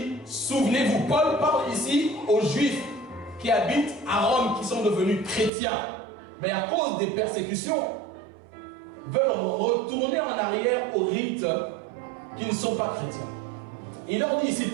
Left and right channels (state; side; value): drops out; left; at 5.5 s